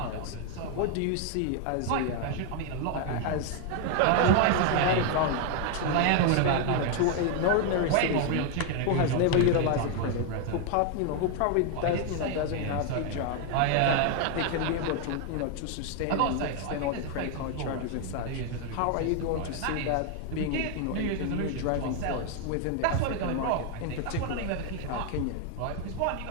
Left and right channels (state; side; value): different; both; correlation 0.01